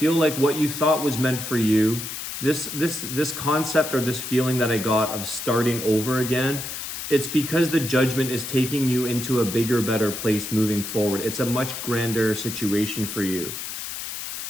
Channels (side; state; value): left; noise; hiss, 7 dB below the sound